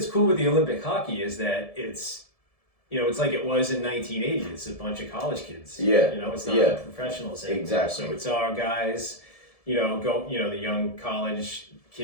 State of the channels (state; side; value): late; right; 1.7 ms